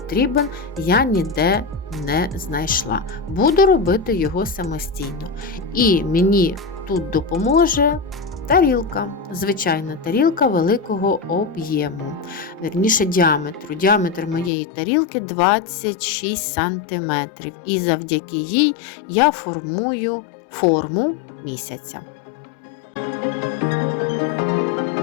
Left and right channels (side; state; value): right; drops out; at 14.5 s